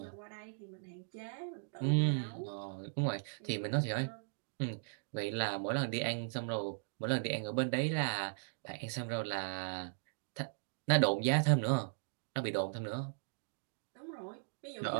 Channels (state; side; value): silent; left; digital silence